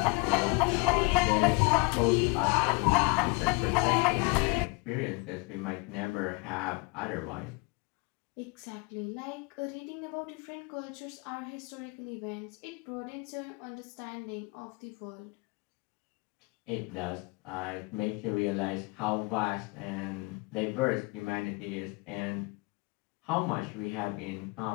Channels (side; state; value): right; quieter; 28.4 dB